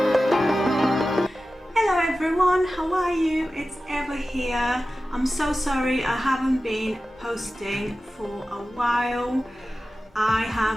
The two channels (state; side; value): normal; both; correlation 0.94